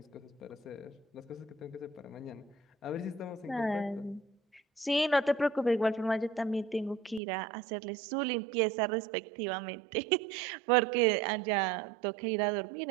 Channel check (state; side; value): drops out; left; at 7.2 s